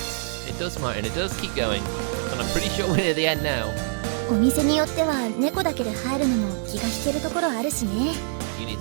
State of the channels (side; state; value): left; silent; digital silence